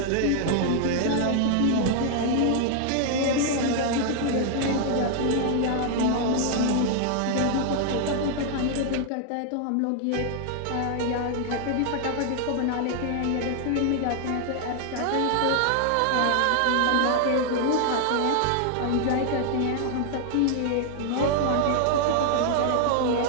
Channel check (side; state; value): both; different; correlation 0.00